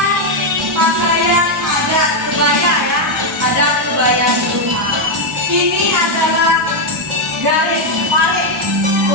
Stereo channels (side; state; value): both; normal; correlation 0.02